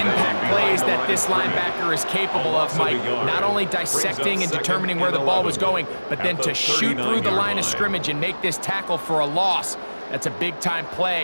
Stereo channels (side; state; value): both; inverted; correlation -1.00